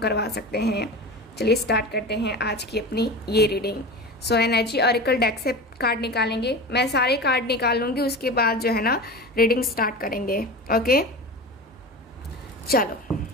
सकते हैं। चलिए स्टार्ट करते हैं आज की अपनी ये रीडिंग। एनर्जी ऑरेकल डेक से कार्ड निकालेंगे। मैं सारे कार्ड निकाल लूँगी, उसके बाद जो है ना रीडिंग स्टार्ट करेंगे। ओके, चलो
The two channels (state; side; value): normal; both; correlation 0.30